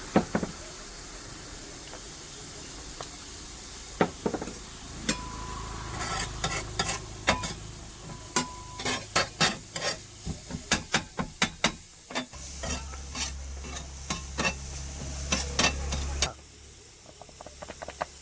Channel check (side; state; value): both; identical; correlation 1.00